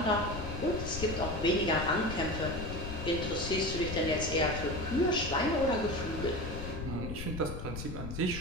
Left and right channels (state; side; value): noise; left; rumble, 6 dB below the sound